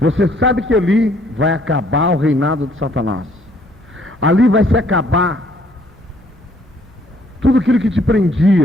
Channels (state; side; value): normal; both; correlation 0.63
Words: Você sabe que ali vai acabar o reinado de Satanás. Ali vai se acabar tudo aquilo que te